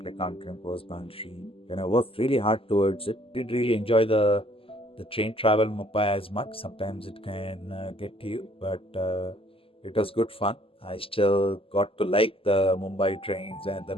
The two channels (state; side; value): late; right; 0.26 ms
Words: accountant was boundary. And I worked really hard towards it. Did really enjoy the train travel in Mumbai as much. Sometimes it can get to you, but it was good fun. I still got to like the Mumbai trains and the